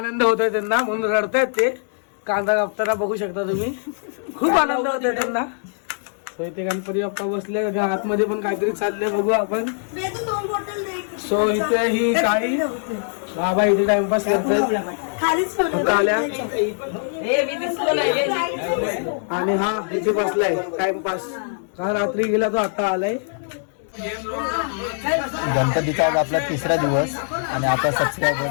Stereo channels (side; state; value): right; silent; digital silence